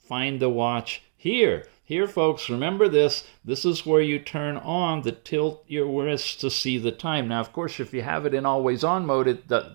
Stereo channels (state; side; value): silent; left; 58 dB below the other